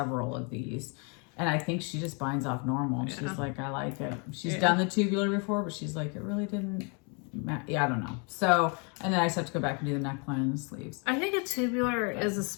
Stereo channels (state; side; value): quieter; right; 35.2 dB